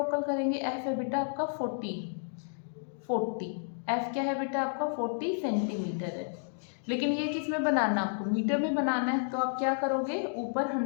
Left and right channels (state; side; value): silent; right; digital silence